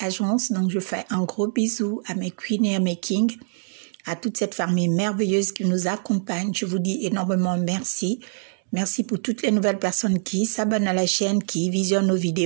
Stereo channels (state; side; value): silent; left; digital silence